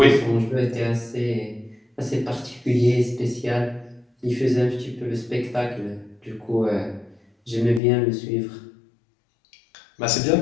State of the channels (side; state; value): right; drops out; at 7.8 s